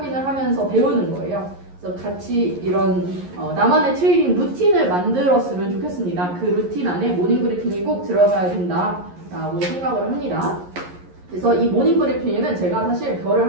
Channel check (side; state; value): left; late; 11 ms